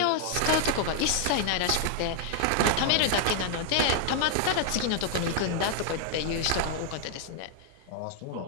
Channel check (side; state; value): both; different; correlation 0.00